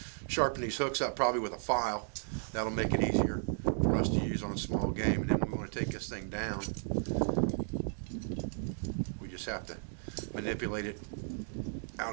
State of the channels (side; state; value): left; silent; digital silence